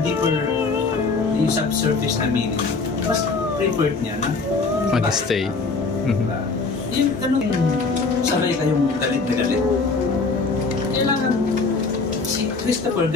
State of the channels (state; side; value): quieter; right; 4.1 dB